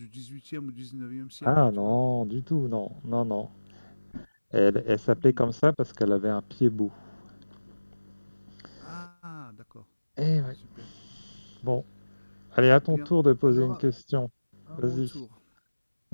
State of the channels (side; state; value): both; inverted; correlation -1.00